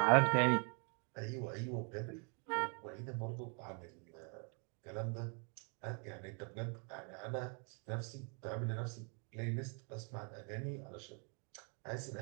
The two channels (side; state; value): left; quieter; 38.4 dB